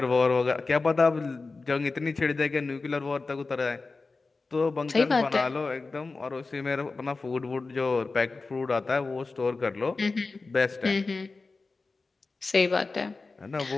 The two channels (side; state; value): right; quieter; 3.9 dB